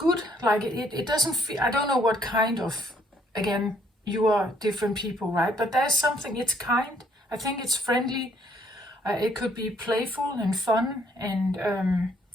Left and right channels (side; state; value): both; normal; correlation 0.67